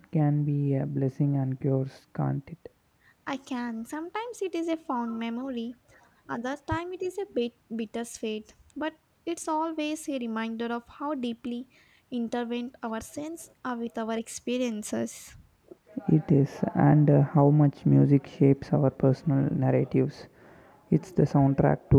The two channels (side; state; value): both; identical; correlation 1.00